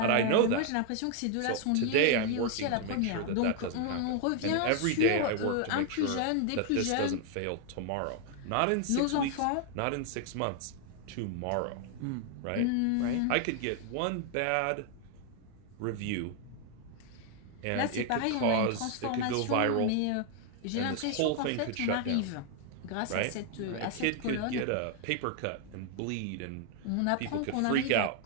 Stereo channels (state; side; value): different; both; correlation 0.00